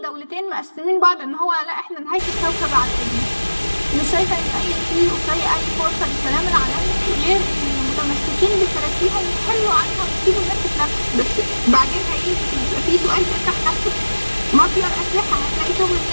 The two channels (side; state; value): both; inverted; correlation -1.00